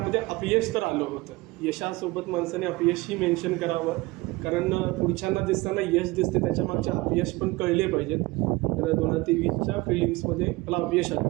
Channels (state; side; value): quieter; left; 22.0 dB